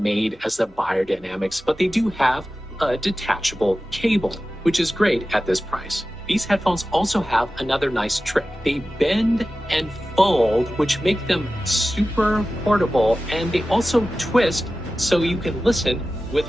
as the biodynamics, but they do have a detachable cable, which is great at this price. These headphones also have another nice trick. They bend and fold, which make them super portable, and they also twist so you can listen with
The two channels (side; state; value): both; normal; correlation 0.95